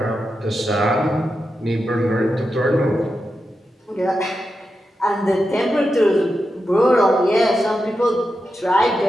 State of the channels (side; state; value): both; normal; correlation 0.89